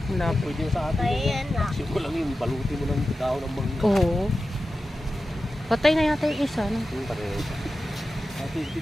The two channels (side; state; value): both; normal; correlation 0.93